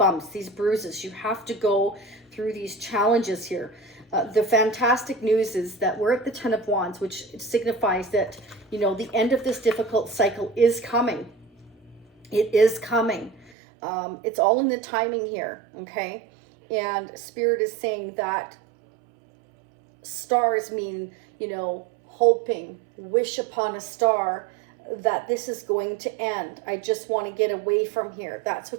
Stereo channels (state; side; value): drops out; left; at 13.5 s